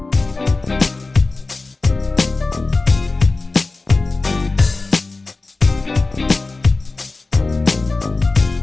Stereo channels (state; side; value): quieter; right; 3.5 dB